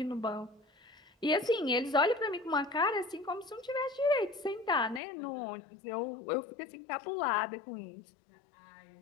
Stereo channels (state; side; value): drops out; right; at 5.0 s